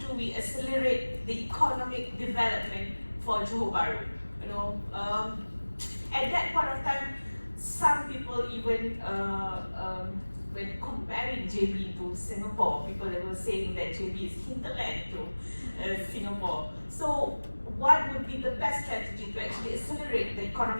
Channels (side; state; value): both; inverted; correlation -1.00